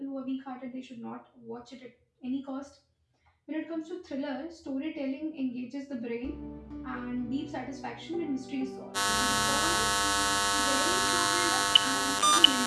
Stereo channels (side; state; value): both; identical; correlation 1.00